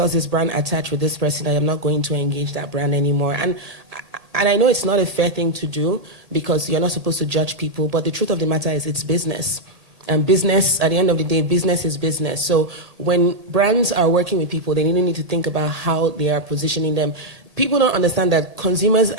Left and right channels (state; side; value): late; left; 1.8 ms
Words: this brand attached with this person, I am not going to engage that brand anymore. And I know it's not a fair thing to do, because you're not supposed to judge people, but the truth of the matter is it's business. And business, at the end of the day, business is business. So when brands are working with people, they need to think about how they are positioning them. People don't understand that consumers,